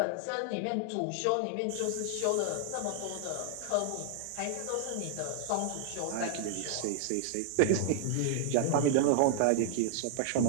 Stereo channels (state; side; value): different; both; correlation 0.00